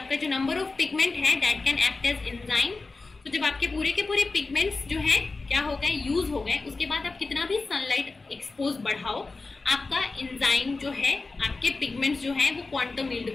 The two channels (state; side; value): quieter; right; 3.7 dB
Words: जो नंबर ऑफ पिगमेंट है that can act as enzyme. तो जब आपके पूरे के पूरे पिगमेंट्स जो है क्या हो गए, यूज हो गए, उसके बाद आप कितना भी सनलाइट एक्सपोज बढ़ाओ, आपका एंजाइम जो है, आपके पिगमेंट्स जो है वो क्वांटम यील्ड